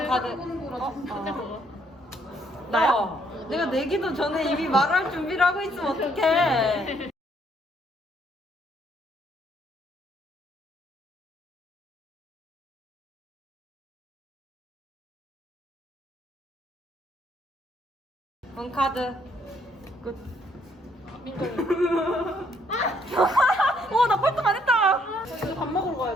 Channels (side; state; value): both; normal; correlation 0.68